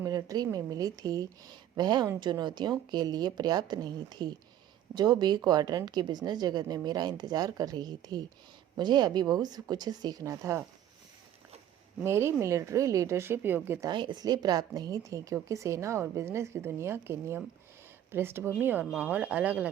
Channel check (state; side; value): quieter; left; 11.1 dB